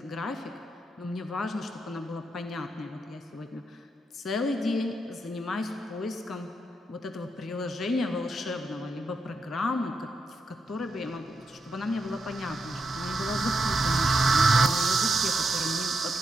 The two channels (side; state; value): both; normal; correlation 0.82